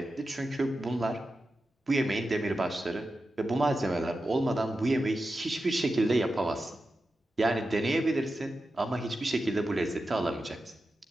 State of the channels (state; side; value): normal; both; correlation 0.91